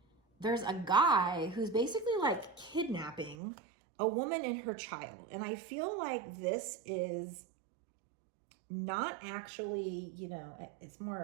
there's a guy who's basically like kidnapping a woman and her child. And I feel like this is not actually, you know, it's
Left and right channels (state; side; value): drops out; left; at 3.4 s